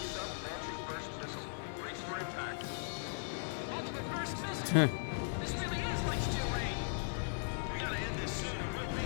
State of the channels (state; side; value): silent; right; 52 dB below the other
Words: sub launching first missile. Brace for impact. Ultimate first missile. This really is like steel rain. We gotta end this soon or we'll be